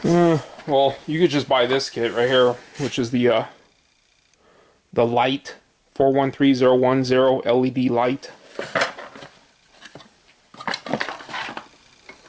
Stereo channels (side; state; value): both; identical; correlation 1.00